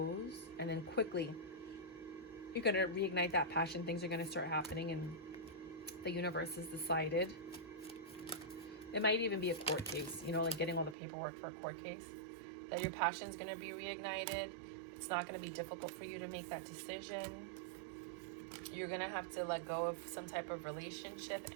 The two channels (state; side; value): drops out; left; at 11.0 s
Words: and then quickly You're going to reignite that passion. Things are going to start happening, and the universe has decided. It might even be a court case, you know, like getting all the paperwork for a court case. That your passion's going to be reignited. It's not going to be difficult for you to make that decision. You're going to have to let go of some type of relationship